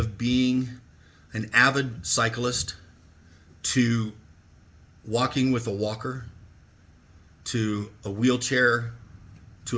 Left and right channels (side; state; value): both; identical; correlation 1.00